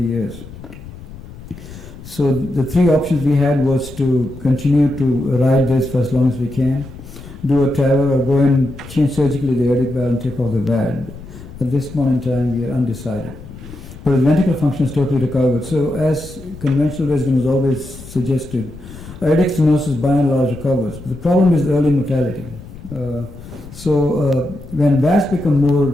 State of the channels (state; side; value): noise; left; rumble, 16 dB below the sound